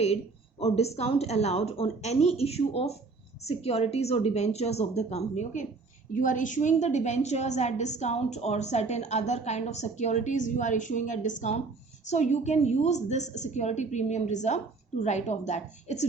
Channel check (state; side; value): quieter; left; 4.1 dB